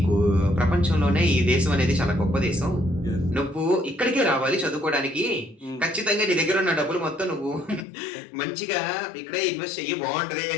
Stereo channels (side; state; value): right; drops out; at 7.9 s